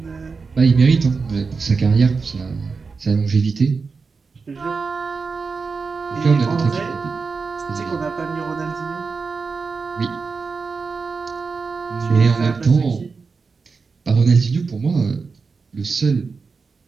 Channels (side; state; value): left; quieter; 4.7 dB